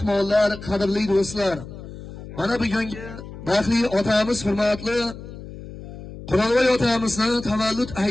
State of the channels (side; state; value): left; noise; hum, 13 dB below the sound